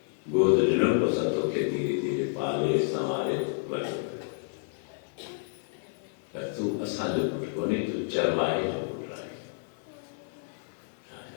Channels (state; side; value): silent; right; digital silence